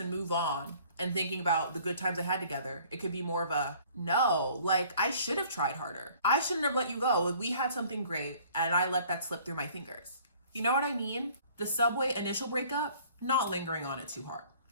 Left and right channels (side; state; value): both; inverted; correlation -0.54